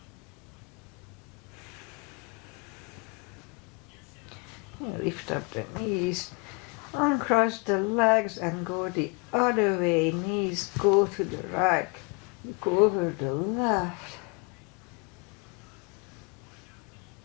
Lift up the knees, uncross the legs and go the other way. Knees go to the right, go over the left.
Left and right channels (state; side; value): quieter; right; 30.8 dB